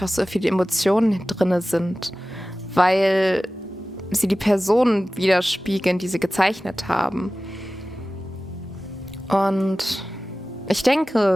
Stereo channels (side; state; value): both; normal; correlation 0.96